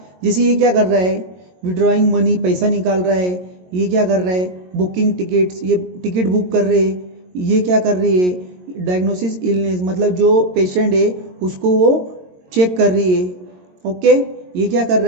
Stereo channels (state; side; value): late; left; 22 ms